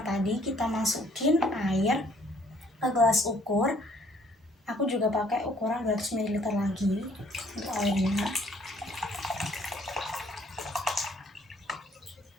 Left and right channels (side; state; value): both; normal; correlation 0.62